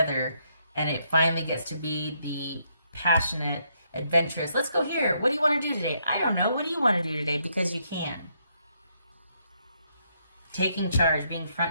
and it finally gets to be the passionate, adventurous. Let's go here. What do you want to do today? I don't know. What do you want to do today? Because you can. Taking charge, being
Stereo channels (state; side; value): inverted; both; correlation -0.75